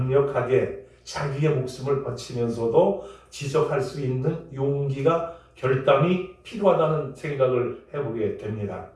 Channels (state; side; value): identical; both; correlation 1.00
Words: 자기의 목숨을 바치면서도 지적할 수 있는 용기가 결단이 필요하다는 생각을 해보게 됩니다.